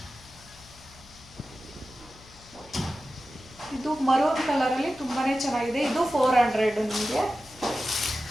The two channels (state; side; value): noise; left; hum, 23 dB below the sound